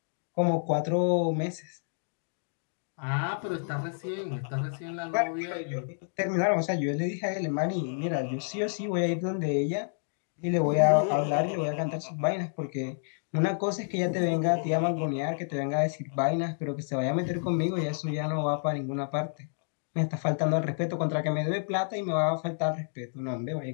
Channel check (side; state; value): right; silent; digital silence